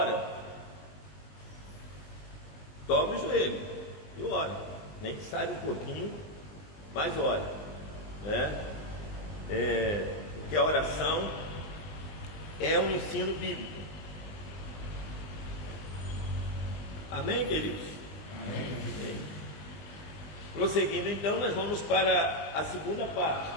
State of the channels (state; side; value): late; right; 20 ms